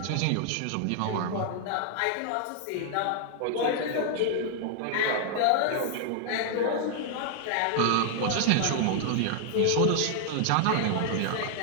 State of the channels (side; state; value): both; different; correlation 0.00